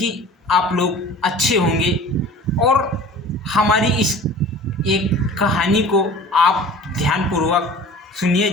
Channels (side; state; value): both; normal; correlation 0.43